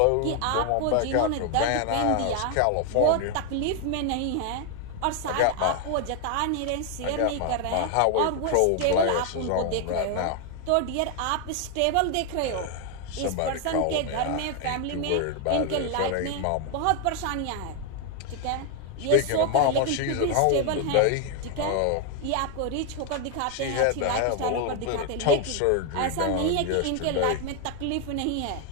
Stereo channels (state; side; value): different; both; correlation 0.01